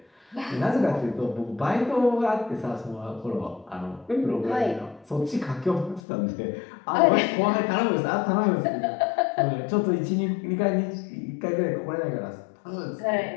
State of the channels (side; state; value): right; drops out; at 6.0 s